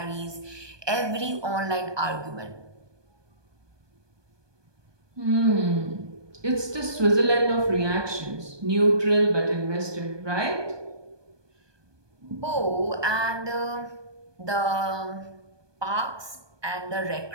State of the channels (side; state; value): left; late; 1.2 ms